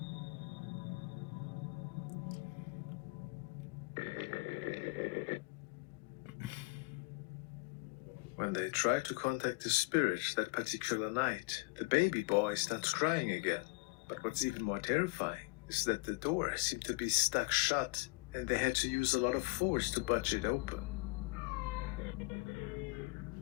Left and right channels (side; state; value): right; quieter; 24.2 dB